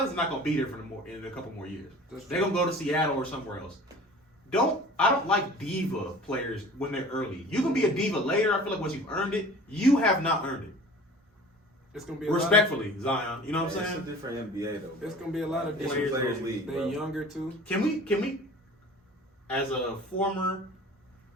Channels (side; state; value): both; normal; correlation 0.44